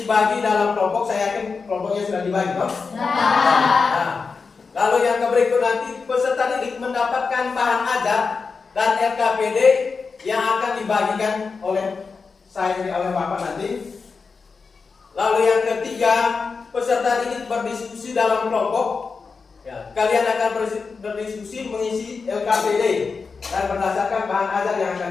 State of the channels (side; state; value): right; quieter; 4.8 dB